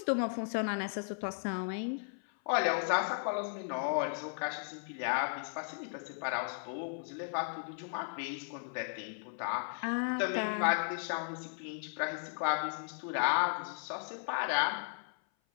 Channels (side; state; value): right; silent; 54 dB below the other